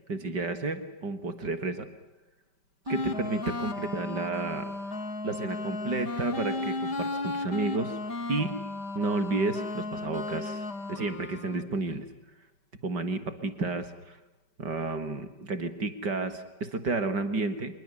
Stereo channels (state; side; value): late; left; 5.2 ms